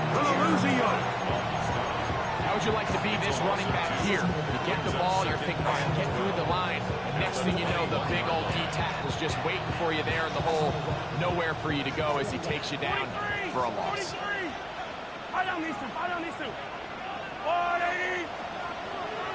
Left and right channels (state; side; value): identical; both; correlation 1.00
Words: Gonna lose a yard. How would you like to be this running back here? You get the ball, you're thinking, all right, get through the line. And next thing you know, the big old D tackle's just waiting for you there in the hole. Nowhere for you to go as he takes you down for a loss.